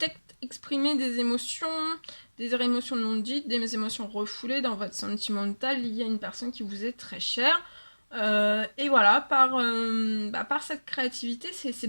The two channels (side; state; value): both; inverted; correlation -1.00